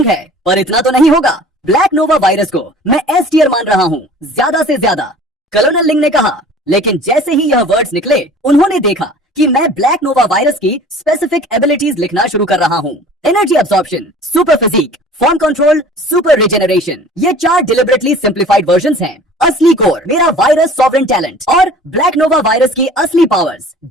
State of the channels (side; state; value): both; normal; correlation 0.46